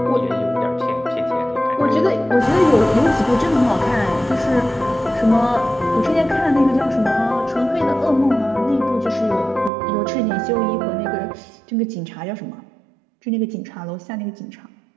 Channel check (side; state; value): left; drops out; at 9.7 s